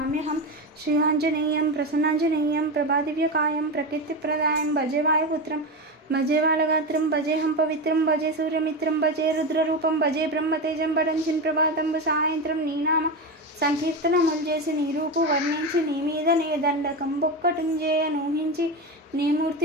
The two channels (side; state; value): both; normal; correlation 0.18